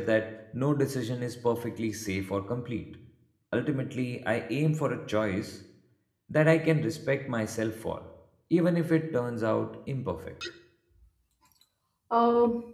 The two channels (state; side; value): identical; both; correlation 1.00